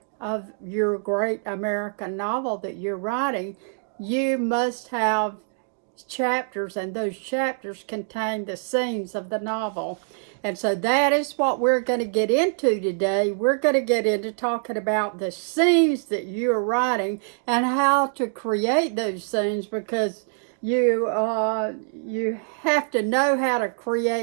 of your great American novel that you're writing, you must have chapters, and those chapters contain the scenes of the novel. And so that is what we're going to get into today. We're going to get into talking about the scenes that you're writing and how to create those scenes, because you have to know how to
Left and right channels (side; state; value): left; silent; digital silence